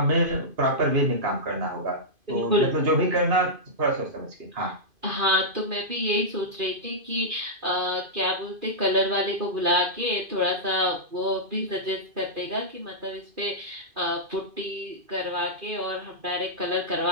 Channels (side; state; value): left; late; 2.5 ms